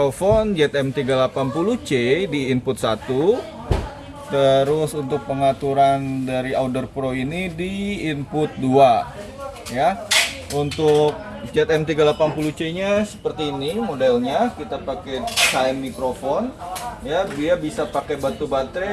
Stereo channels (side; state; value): both; identical; correlation 1.00